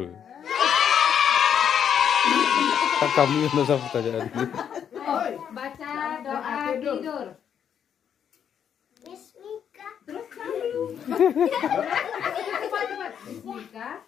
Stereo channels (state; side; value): quieter; right; 8.5 dB